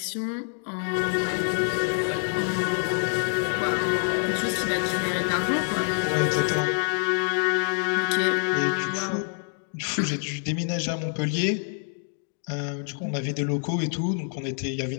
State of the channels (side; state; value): right; silent; 61 dB below the other